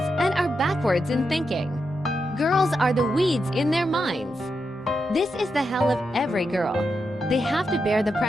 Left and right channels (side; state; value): both; normal; correlation 0.86